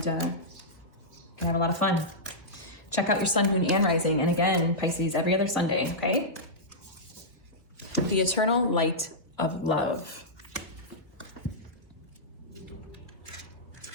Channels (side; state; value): both; normal; correlation -0.12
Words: can have a lot of fun. Check out your sun, moon, and rising. And again, Pisces, every other Sunday, okay? The eternal light of love.